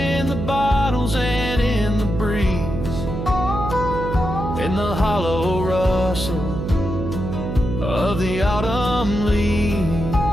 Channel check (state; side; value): noise; right; hum, 4 dB below the sound